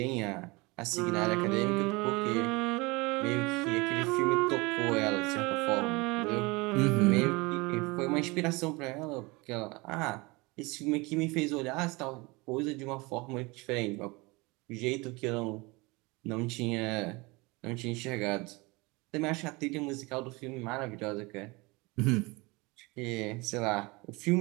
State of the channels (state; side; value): quieter; left; 25.0 dB